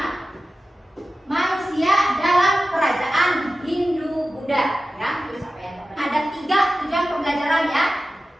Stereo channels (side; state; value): both; normal; correlation 0.94